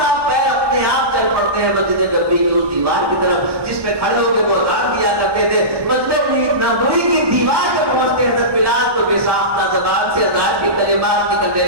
پیر اپنے آپ چل پڑتے ہیں مسجد نبوی کی اس دیوار کی طرف جس پہ کھڑے ہو کے وہ اذان دیا کرتے تھے. مسجد نبوی کی دیوار پہ پہنچتے ہیں حضرت بلال تو بے ساختہ زبان سے اذان کے کلمات نکلنے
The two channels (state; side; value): late; left; 1.2 ms